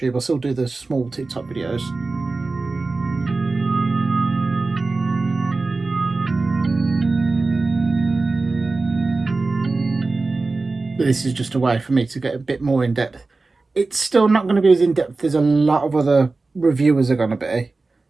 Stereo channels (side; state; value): left; quieter; 3.6 dB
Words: I'll still do the small TikTok videos. But this is just a way for me to get a bit more in-depth. It's still not going to be as in-depth as a lot of other reviewers are going to be,